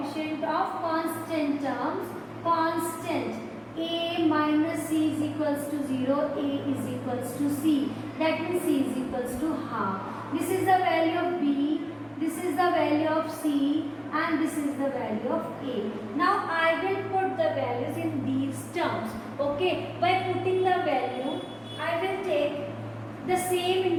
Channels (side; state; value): both; identical; correlation 1.00